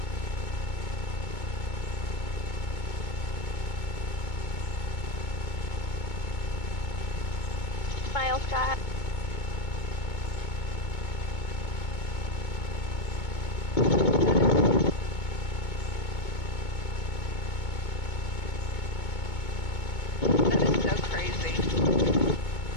Smile, Scott. That is so crazy.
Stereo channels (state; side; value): late; right; 2.2 ms